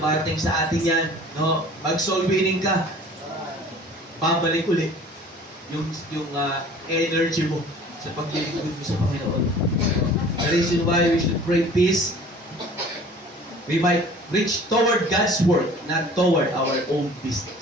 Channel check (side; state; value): both; normal; correlation 0.47